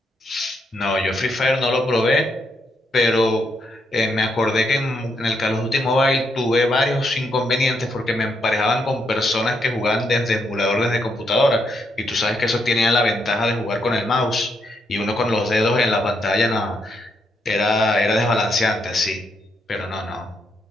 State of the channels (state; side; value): normal; both; correlation 0.78